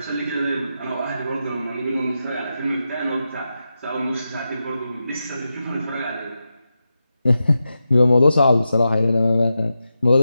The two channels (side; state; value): both; inverted; correlation -0.89